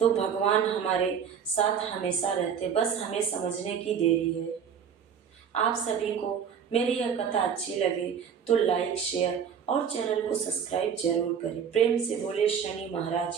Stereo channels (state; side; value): quieter; left; 7.4 dB